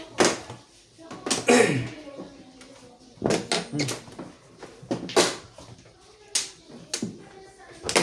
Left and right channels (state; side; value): identical; both; correlation 1.00